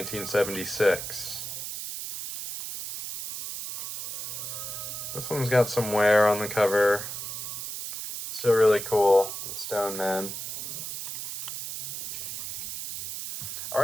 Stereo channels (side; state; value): right; noise; hiss, 6 dB below the sound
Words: This one's got some wear on the cover. Still really cool, The Stone Man.